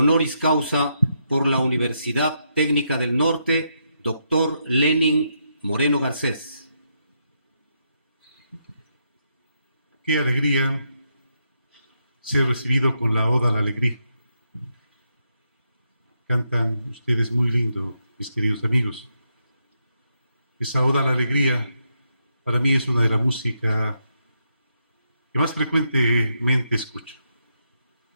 causa por la Universidad Técnica del Norte, doctor Lenin Moreno Garcés. Qué alegría ser recibido con la Oda a la Alegría. Cantan ustedes muy lindo, mis queridos amigos. Esa Oda a la Alegría para mí es una de la música que más frecuentemente escucho.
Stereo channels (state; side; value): inverted; both; correlation -0.80